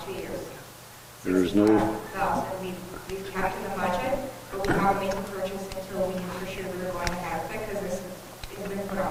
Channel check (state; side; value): identical; both; correlation 1.00